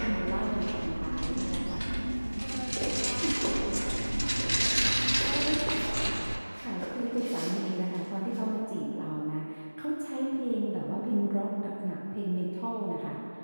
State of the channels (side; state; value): both; inverted; correlation -1.00